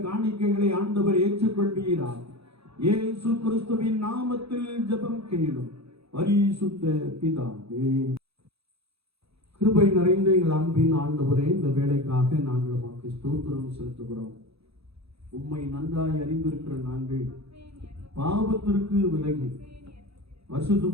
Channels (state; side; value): late; left; 0.78 ms